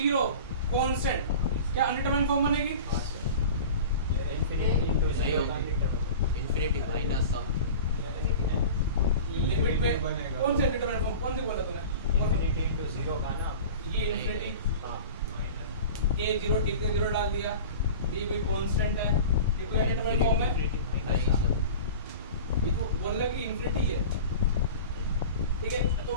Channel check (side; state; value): both; inverted; correlation -0.36